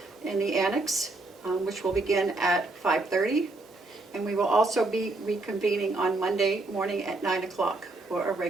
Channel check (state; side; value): quieter; left; 3.1 dB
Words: in the Annex, which will begin at 5:30. And we will also be reconvening on Monday morning at 9 o'clock for a